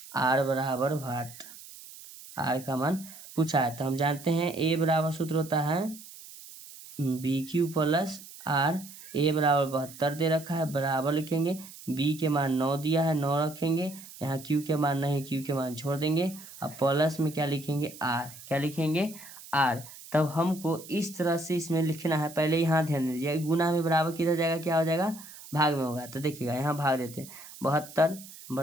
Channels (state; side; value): noise; right; hiss, 17 dB below the sound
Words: R बराबर वाट, R का मान पूछा है। तो हम जानते हैं A बराबर सूत्र होता है BQ + R। A = 72 दे रखा है, बराबर लिखेंगे, B के मान 9 दिया है, 9 रखेंगे, यहाँ Q के मान नहीं, Q के मान छोड़ देंगे। अब प्लस में क्या लिखेंगे? R। क्या लिखेंगे? R। तब हमको इस तरह से इसमें लिखना है। पहले यहाँ ध्यान दीजिए, गुना में बराबर किधर जाएगा? क्या हो जाएगा? भाग में होगा। तो देखिएगा यहाँ भाग देते हैं, 72